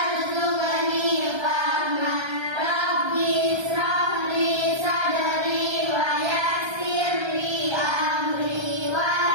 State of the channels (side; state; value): left; late; 1.2 ms